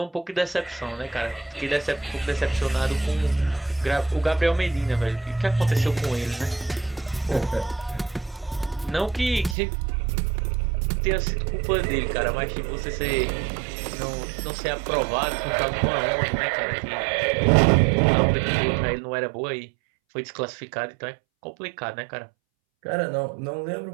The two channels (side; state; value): left; drops out; at 9.6 s